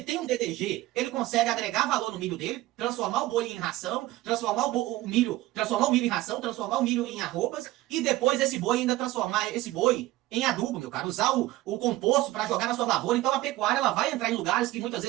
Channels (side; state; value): left; quieter; 17.1 dB